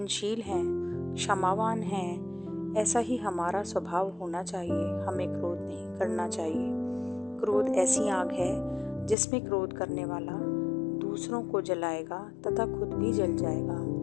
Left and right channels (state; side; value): drops out; right; at 9.2 s